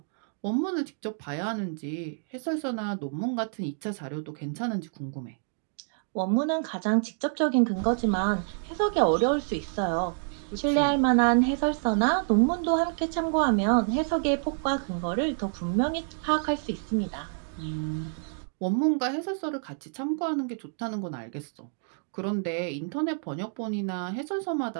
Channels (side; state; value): left; silent; 59 dB below the other